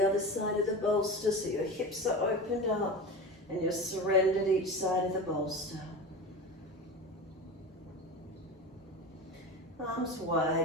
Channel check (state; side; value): normal; both; correlation 0.28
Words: other side of the bolster so your hips are opened up and you're surrendered each side of the bolster. Arms